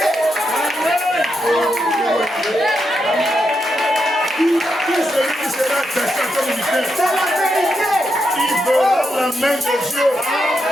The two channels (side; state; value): both; normal; correlation 0.84